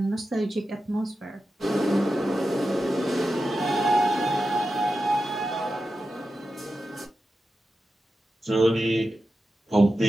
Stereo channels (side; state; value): both; normal; correlation 0.91